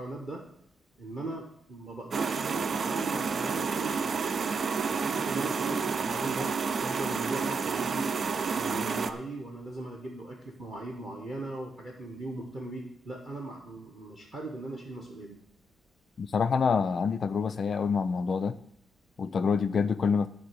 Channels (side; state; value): both; normal; correlation 0.79